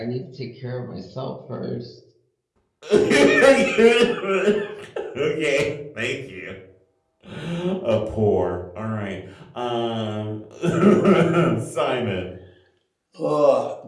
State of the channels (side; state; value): both; identical; correlation 1.00